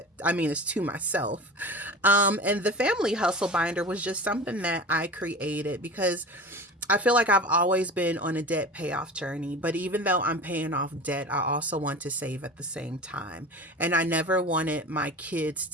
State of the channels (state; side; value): normal; both; correlation 0.34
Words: I mean, it's to myself. And the family hustle binder was just something that I created because I feel like I've always been on a debt payoff journey, but even though I'm paying off debt, I also want to save at the same time. And I never wanted my kids